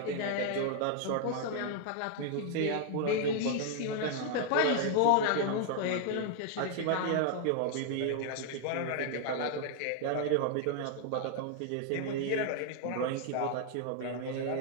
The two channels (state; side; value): different; both; correlation 0.00